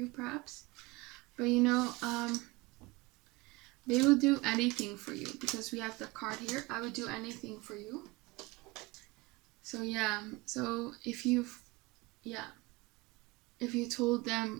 perhaps. But they will do anything for you, because we have the card here. I would do anything for you. So yeah, so if you told them,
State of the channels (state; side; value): quieter; left; 23.2 dB